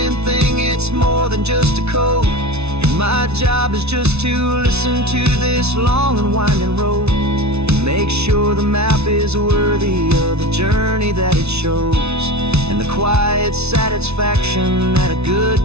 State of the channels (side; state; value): left; late; 0.80 ms